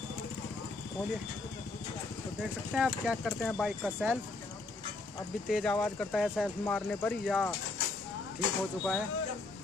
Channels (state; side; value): quieter; right; 3.4 dB